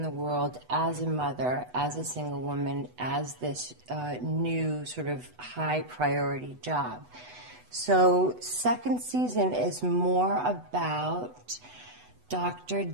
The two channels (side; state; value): left; late; 8.1 ms